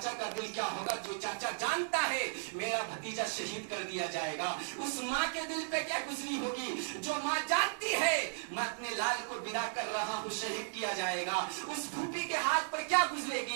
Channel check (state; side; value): silent; left; digital silence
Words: का दिल क्या होगा, जो चाचा जानता है मेरा भतीजा शहीद कर दिया जाएगा, उस माँ के दिल पे क्या गुजरी होगी जो माँ जानती है मैं अपने लाल को विदा कर रहा हूँ शहीद किया जाएगा, उस फूफी के हाथ पर क्या